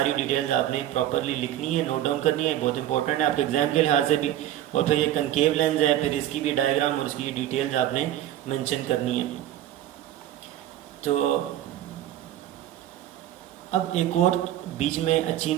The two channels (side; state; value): left; quieter; 12.6 dB